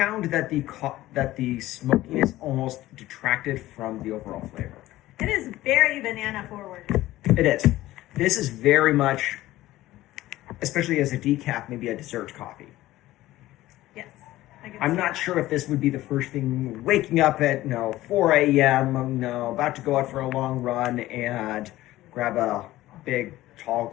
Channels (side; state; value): right; quieter; 16.1 dB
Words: that the smokiness almost detracted from the overall flavor. It is very banana forward. It is. This is very much, especially as a decaf, maybe a dessert coffee. Yes. I'm not sure if this would be the first thing, waking up at 4 a.m., about to go out for a long run and grab a big tall